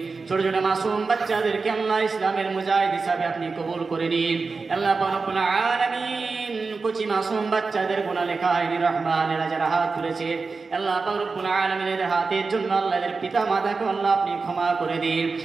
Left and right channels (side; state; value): left; quieter; 4.3 dB